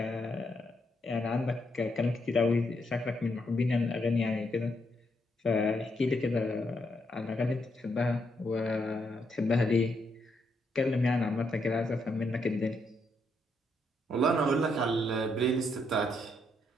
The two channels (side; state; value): both; normal; correlation 0.77